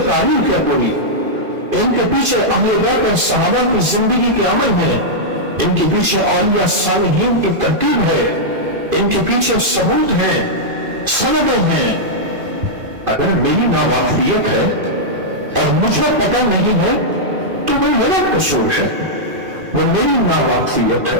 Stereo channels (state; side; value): late; left; 2.5 ms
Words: تاریخ ہے پوری، ان کے پیچھے اہل بیت اور صحابہ کی زندگی کے عمل ہیں، ان کے پیچھے اولیاء صالحین کی ترتیب ہے، ان کے پیچھے ثبوت ہیں، سندیں ہیں. اگر میری ناواقفیت ہے اور مجھے پتہ نہیں ہے تو وہ میرا قصور ہے، وہ میری ناواقفیت ہے